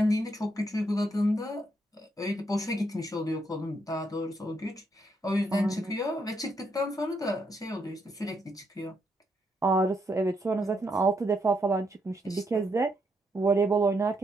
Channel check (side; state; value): both; normal; correlation 0.77